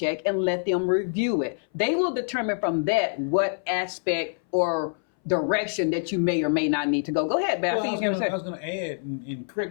and let them review it. They will determine from that what aspect or direction that you may or may not need to go. Go ahead, Beth. Well, I was going to add, and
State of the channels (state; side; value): silent; right; 60 dB below the other